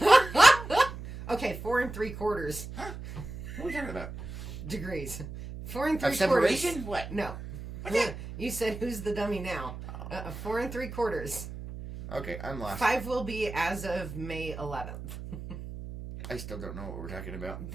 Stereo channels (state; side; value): noise; right; hum, 10 dB below the sound